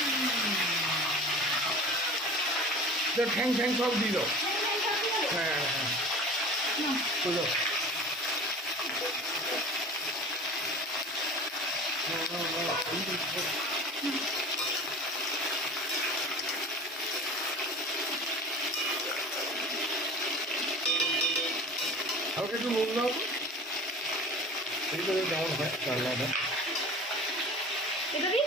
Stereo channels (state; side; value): normal; both; correlation 0.39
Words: ঠ্যাং ঠ্যাং সব দিয়ে দাও। হ্যাঁ হ্যাঁ হ্যাঁ, দাও দাও। হালকা একটু নুন দাও, এই করে দাও, হয় রান্নাটা এটা দিই